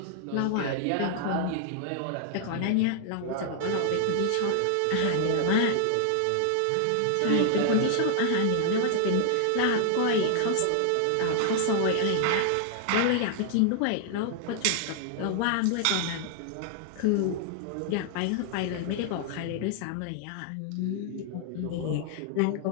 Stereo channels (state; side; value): different; both; correlation 0.00